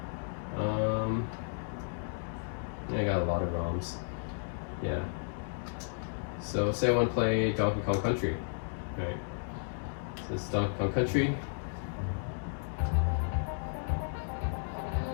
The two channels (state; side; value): silent; right; digital silence